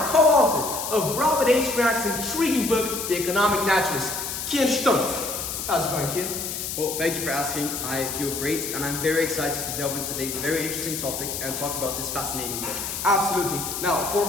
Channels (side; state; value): left; noise; hiss, 5 dB below the sound